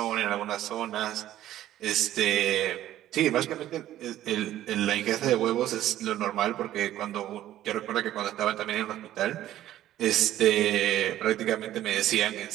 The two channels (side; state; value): left; quieter; 13.2 dB